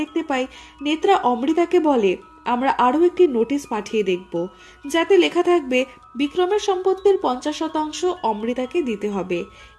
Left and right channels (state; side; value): identical; both; correlation 1.00